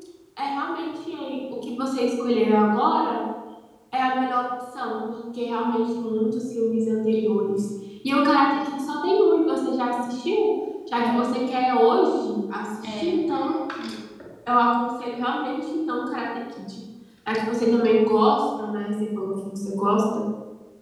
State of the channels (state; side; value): identical; both; correlation 1.00